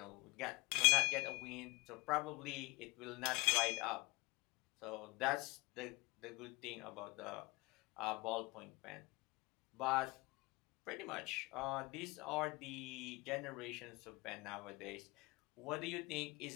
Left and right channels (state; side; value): quieter; right; 24.4 dB